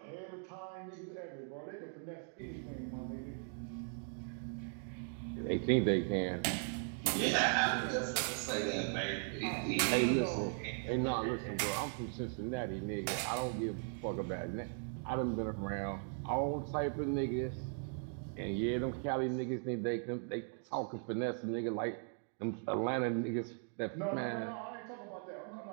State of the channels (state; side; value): silent; left; 52 dB below the other